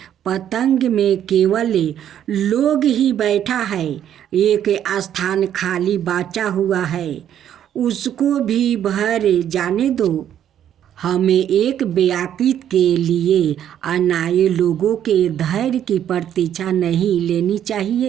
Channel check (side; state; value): left; quieter; 10.2 dB